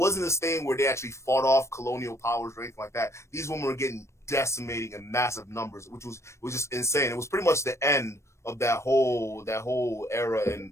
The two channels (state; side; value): late; right; 0.13 ms